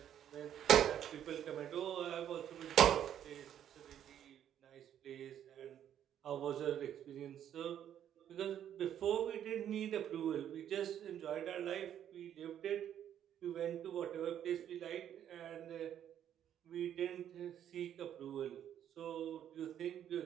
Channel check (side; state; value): left; quieter; 10.1 dB